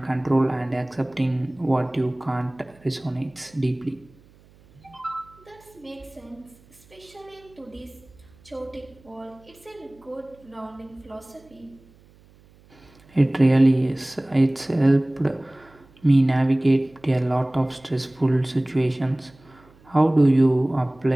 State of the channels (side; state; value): right; noise; hum, 28 dB below the sound